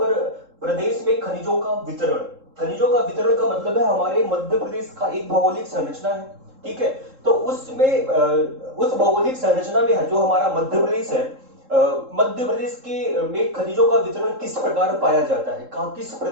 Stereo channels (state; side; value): late; left; 3.7 ms